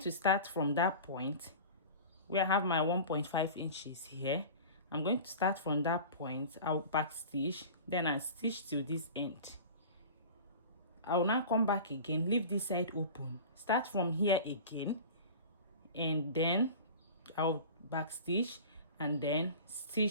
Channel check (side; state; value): both; inverted; correlation -0.36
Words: start from that point where I have my 1.5 inches here. I'm going to start from that point. I'll back stitch, then I stitch till this end. I will now come back again, leave this side open, start from here again, and then I'll back stitch and then